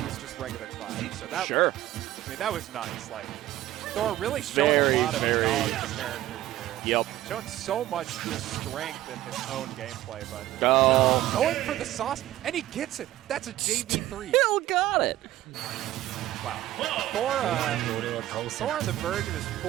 was just regular Cloud. So that, Sure. I mean, that was nice. Like, Thor really showing a lot of knowledge of the character here. Yep. Showing so much just strength in his own gameplay, but Go. going for the sauce, and he gets it. That's a JV3. Still got it. Wow. Thor on the verge of his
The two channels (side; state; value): left; quieter; 14.7 dB